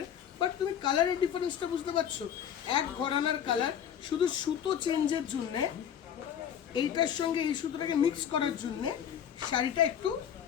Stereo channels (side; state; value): right; quieter; 9.0 dB